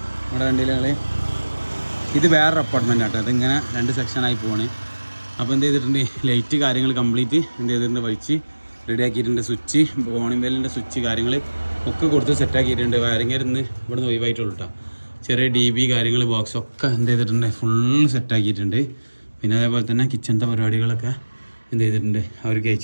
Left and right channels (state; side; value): inverted; both; correlation -1.00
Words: നമ്മുടെ വണ്ടിയിലെ ഇത് വേറൊരു അപ്പാർട്ട്മെൻ്റ് ആട്ടോ. അതിങ്ങനെ 2 സെക്ഷനായി പോവാണ്. അപ്പോൾ എന്ത് ചെയ്തിട്ടുണ്ട്, ലൈറ്റ് കാര്യങ്ങൾ കംപ്ലീറ്റ് എന്ത് ചെയ്തിട്ടുണ്ട്, വലിച്ച് റെഡിയാക്കിയിട്ടുണ്ട്. സ്വിച്ച് കോണിംബെല്ലിൻ്റെ സ്വിച്ച് കാര്യങ്ങൾ ഒക്കെ കൊടുത്ത് സെറ്റാക്കിയിട്ടുണ്ട്. വയറിങ്ങരുന്ന് ഇവിടുന്ന് ഒഴിവായിട്ടുള്ളൂ കേട്ടോ. ചെറിയ DB കാര്യങ്ങൾ ബോക്സൊക്കെ എന്ത് ചെയ്തിട്ടുണ്ട്, ഫുള്ള് സെറ്റാക്കിയിട്ടുണ്ട്. പിന്നെ അതേപോലെ തന്നെ കിച്ചണത്തെ പരിപാടികളൊക്കെ എന്ത് ചെയ്തിട്ടുണ്ട്, അവർക്ക്